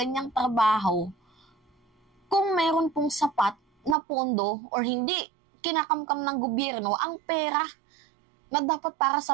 trabaho kung meron pong sapat na pondo or hindi kinakamkam ng gobyerno ang pera na dapat para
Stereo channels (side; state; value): left; drops out; at 4.0 s